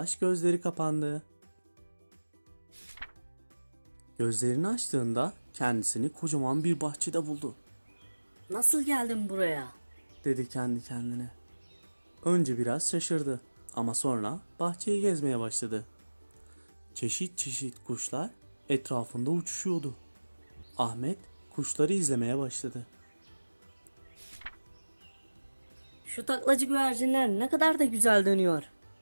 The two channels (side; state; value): both; inverted; correlation -1.00